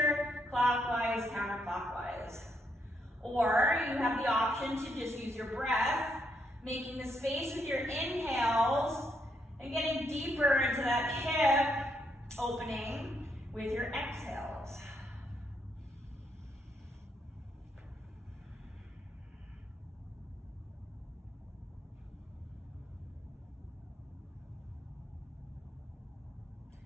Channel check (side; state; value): both; normal; correlation 0.76